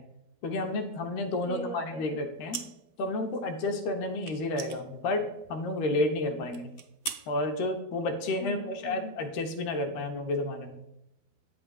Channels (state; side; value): late; right; 12 ms